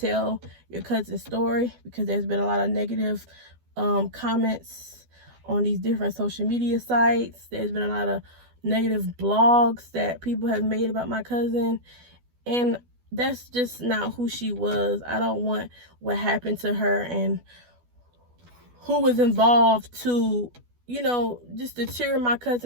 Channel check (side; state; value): left; late; 12 ms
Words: your cousin's story, because there's been a lot of negative comments on these different social media sites. There's been a lot of negative blogs that people have made about my cousin, and that's just not who she was. I don't want what happened to her and who was involved to, you know, just deter my